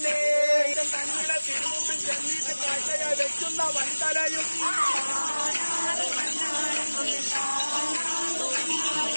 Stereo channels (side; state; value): both; inverted; correlation -1.00